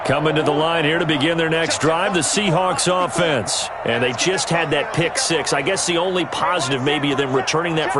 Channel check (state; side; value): identical; both; correlation 1.00